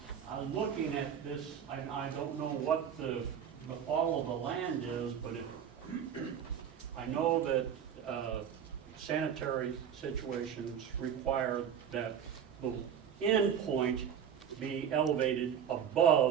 I'm looking at this. I don't know what the fall of the land is, but I know that sanitary situations require that the end point be elevated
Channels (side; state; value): left; quieter; 8.4 dB